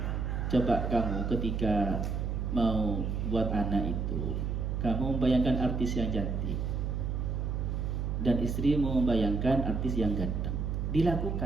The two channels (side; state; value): right; noise; hum, 1 dB below the sound